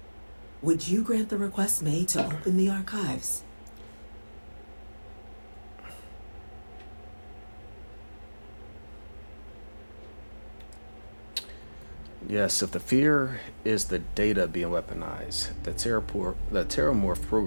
would you grant the request made to open the archives? Yes, if the fear is the data being weaponized, the Terramorph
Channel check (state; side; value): inverted; both; correlation -1.00